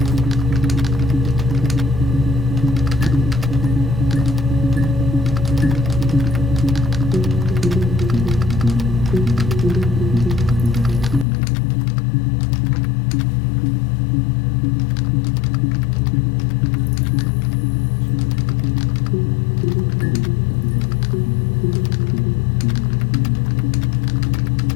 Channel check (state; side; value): drops out; right; at 11.2 s